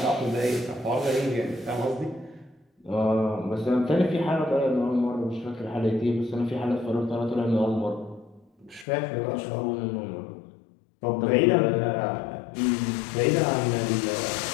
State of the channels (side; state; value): right; drops out; at 8.8 s